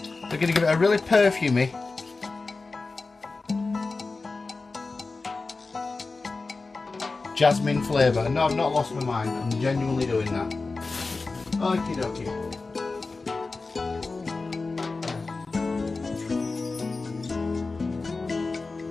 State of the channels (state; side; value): quieter; right; 3.8 dB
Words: going to give it a really perfumey jasmine flavour. No, I've not lost my mind. I'm genuinely doing that. Okie dokie.